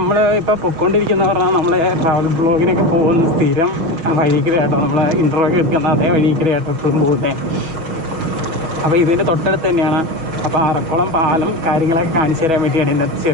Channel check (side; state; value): left; late; 6.2 ms